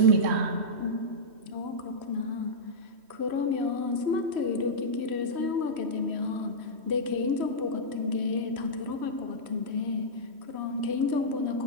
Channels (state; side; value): late; left; 3.1 ms